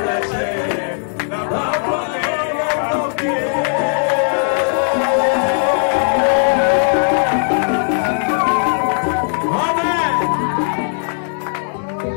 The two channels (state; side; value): silent; right; digital silence